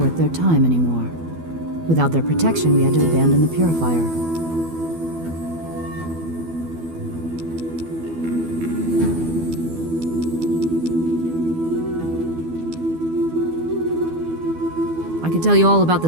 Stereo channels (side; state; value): left; late; 12 ms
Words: their time anymore. Without their protection, we had to abandon the purifier. I could tell you all about